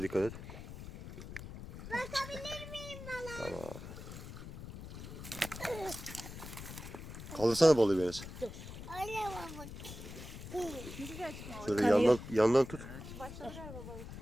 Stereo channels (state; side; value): noise; left; rumble, 11 dB below the sound